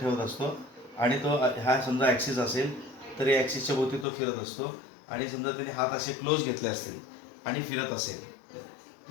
असतो आणि तो हा समजा ॲक्सिस असेल तर या ॲक्सिसच्या भोवती तो फिरत असतो आणि समजा त्याने हात असे क्लोज घेतले असतील आणि फिरत असेल.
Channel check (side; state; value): right; drops out; at 4.0 s